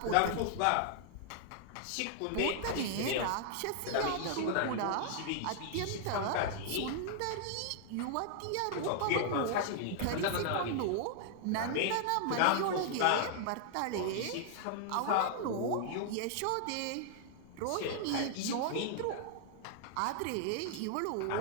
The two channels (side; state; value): both; different; correlation -0.01